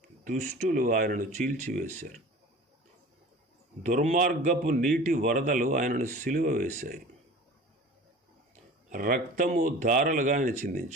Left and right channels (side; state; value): both; normal; correlation 0.40